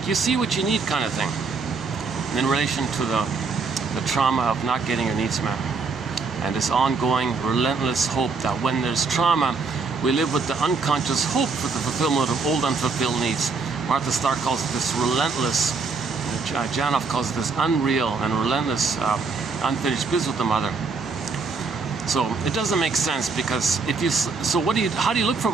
you see what you need kind of thing. And in relation to the trauma of not getting your needs met. And this ongoing, relentless hope that when there's trauma, we live with the unconscious hope for the fulfillment of old unfulfilled needs. Martha Stark calls it this relentless, Janoff calls it this unreal and relentless unfinished business with the mother. So it doesn't make sense because how do you look for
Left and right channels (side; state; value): left; quieter; 4.6 dB